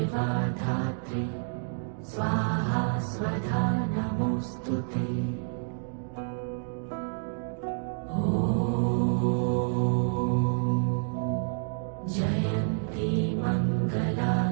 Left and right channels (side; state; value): left; silent; digital silence